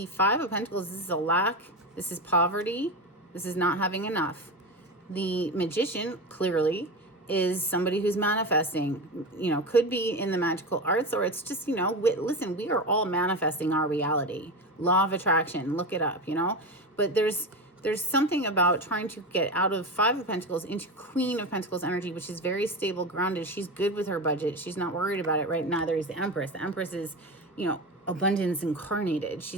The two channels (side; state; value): both; normal; correlation 0.21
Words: Five of Pentacles, this is a lack, this is poverty, this is not having enough. The Magician, clearly, is somebody who's manifesting, you know, could be in the magical arts, or it's just, you know, listen, we are all manifesting our reality. Law of attraction, look it up, you know, but there's something about trying to get out of Five of Pentacles into Queen of Pentacles energy, which is very stable, grounded. She's good with her budget. She's not worried about it, right? Neither is the Empress. The Empress is, you know, abundance incarnated.